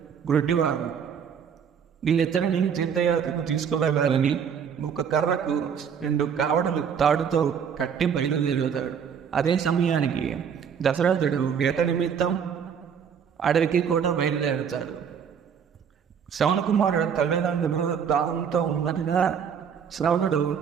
గుడ్డివారు. వీళ్ళిద్దరిని తీర్థయాత్రకు తీసుకువెళ్ళాలని ఒక కర్రకు 2 కావడలు తాడుతో కట్టి బయలుదేరుతాడు. అదే సమయానికి దశరథుడు వేట నిమిత్తం అడవికి కూడా బయలుదేరుతాడు. శ్రవణ కుమారుడు తల్లిదండ్రులు దాహంతో ఉన్నట్టుగా శ్రవణుడు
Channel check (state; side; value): quieter; left; 7.4 dB